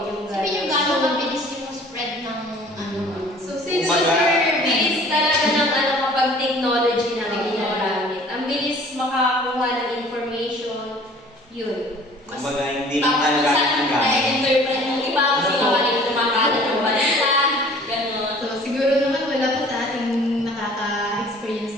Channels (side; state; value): both; normal; correlation 0.50